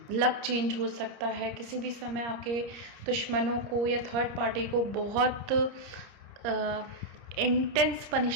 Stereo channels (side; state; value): left; late; 30 ms